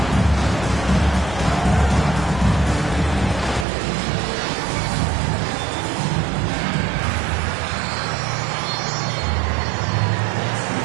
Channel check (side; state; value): left; drops out; at 3.7 s